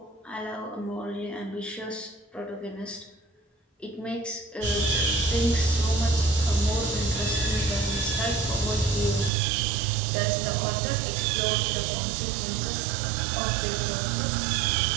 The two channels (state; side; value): drops out; left; at 9.3 s